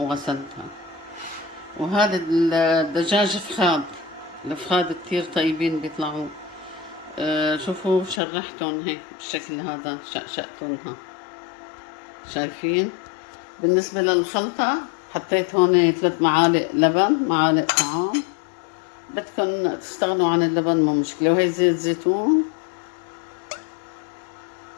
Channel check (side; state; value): right; drops out; at 8.2 s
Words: وهذا الدجاج فخاد. الفخاد كتير طيبين بيطلعوا. شوفوا شرحتهم هيك بالشكل هذا، شقشقتهم. شايفين؟ بالنسبة للخلطة حطيت هون 3 معالق لبن، معالق طعام. بدكن تستغنوا عن اللبن مو مشكلة. وهي زيت زيتون،